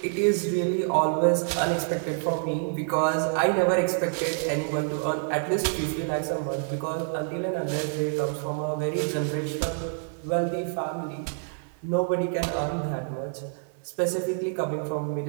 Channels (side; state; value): left; silent; digital silence